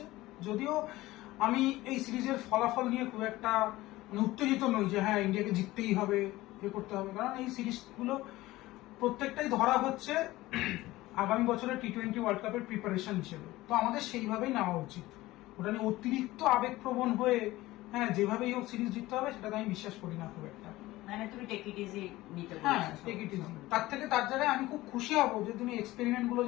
যদিও আমি এই সিরিজের ফলাফল নিয়ে খুব একটা উত্তেজিত নই যে হ্যাঁ ইন্ডিয়াকে জিততেই হবে, করতে হবে, কারণ এই সিরিজগুলো প্রত্যেকটাই ধরা হচ্ছে আগামী বছরের টি-20 ওয়ার্ল্ড কাপের প্রিপারেশন হিসেবে। তো আমাদের সেইভাবেই নেওয়া উচিত। ওটা নিয়ে অতিরিক্ত আবেগপ্রবণ হয়ে হ্যাঁ যেভাবেই হোক সিরিজ জিততে হবে সেটা আমি বিশ্বাস করি না খুব একটা। মানে তুমি টেক ইট ইজি নিতে বলছো? হ্যাঁ, টেক ইট ইজি। তার জায়গায় আমি খুব খুশি হব যে তুমি এক্সপেরিমেন্ট গুলো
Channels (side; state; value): right; quieter; 17.9 dB